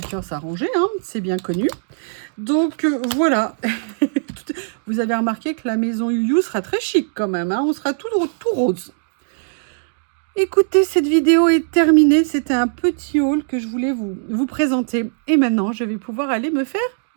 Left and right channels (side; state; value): left; silent; digital silence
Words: à ranger, hein, c'est bien connu. Donc voilà, vous avez remarqué que la maison Youyou sera très chic quand même, hein, on sera tout rose. Écoutez, cette vidéo est terminée, c'était un petit haul que je voulais vous présenter. Et maintenant, je vais pouvoir aller me faire